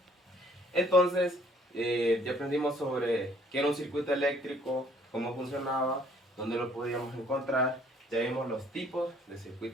Entonces, ya aprendimos sobre qué era un circuito eléctrico, cómo funcionaba, dónde lo podíamos encontrar, ya vimos los tipos de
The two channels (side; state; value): both; normal; correlation 0.60